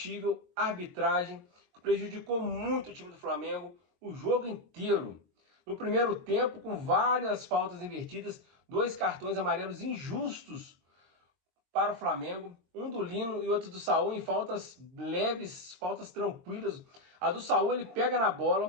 arbitragem que prejudicou muito o time do Flamengo o jogo inteiro. No primeiro tempo, com várias faltas invertidas, dois cartões amarelos injustos para o Flamengo, um do Lino e outro do Saul em faltas leves, faltas tranquilas. A do Saul ele pega na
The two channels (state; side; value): late; left; 22 ms